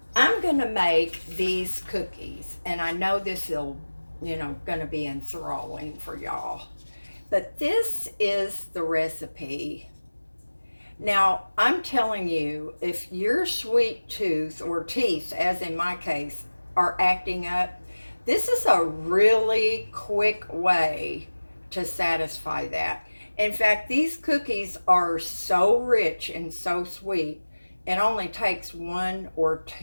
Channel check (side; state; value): both; inverted; correlation -1.00